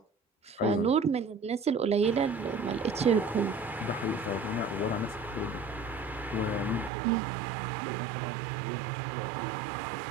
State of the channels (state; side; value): drops out; left; at 6.9 s